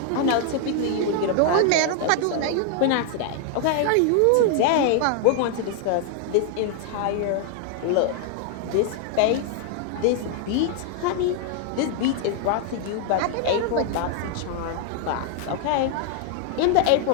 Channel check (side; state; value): both; different; correlation 0.00